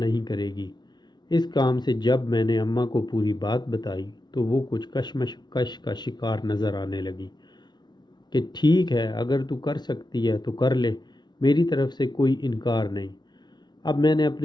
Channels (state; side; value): late; right; 0.20 ms